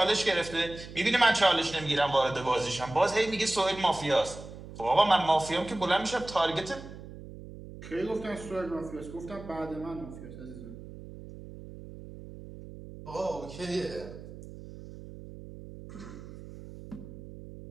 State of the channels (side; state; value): right; noise; hum, 14 dB below the sound